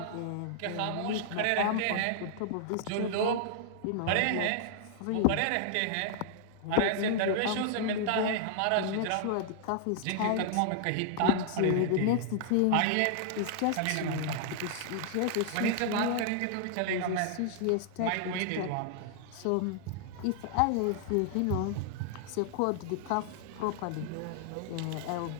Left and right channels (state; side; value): different; both; correlation -0.01